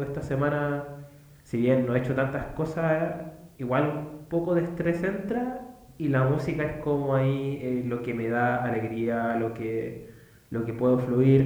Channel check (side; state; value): both; identical; correlation 1.00